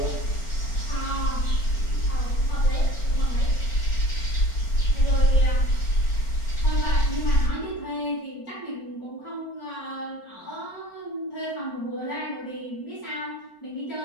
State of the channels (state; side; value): late; right; 4.4 ms